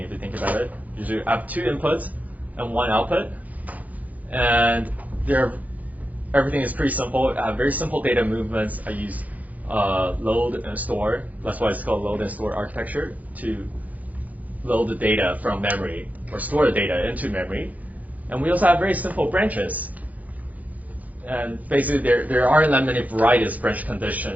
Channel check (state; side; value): late; left; 0.078 ms